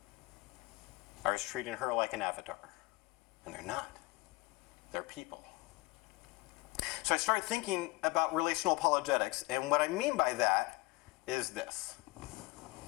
I was treating her like an avatar. And they're not. They're people. So I started thinking about relational apologetics, and what I mean by that is this.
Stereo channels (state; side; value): quieter; right; 22.7 dB